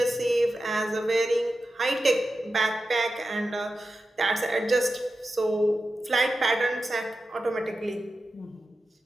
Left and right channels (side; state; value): both; normal; correlation 0.92